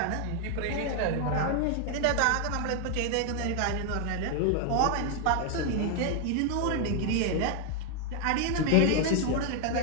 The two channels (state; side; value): different; both; correlation 0.00